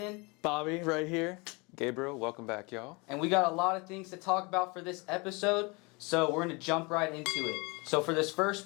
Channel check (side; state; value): right; quieter; 27.8 dB